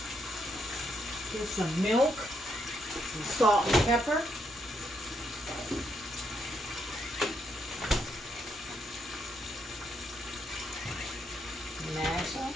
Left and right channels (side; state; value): both; normal; correlation 0.76